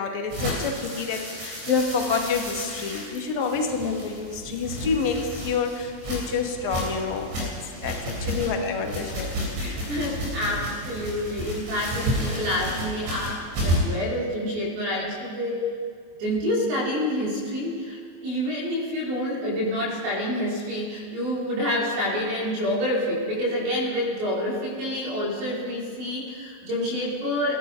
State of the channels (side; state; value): left; late; 24 ms